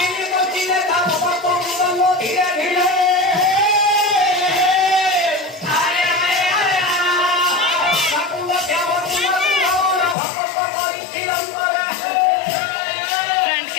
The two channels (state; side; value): drops out; right; at 10.2 s